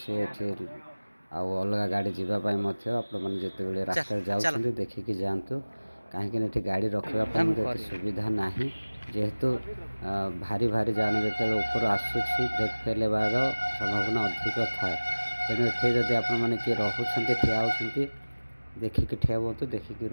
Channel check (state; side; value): inverted; both; correlation -1.00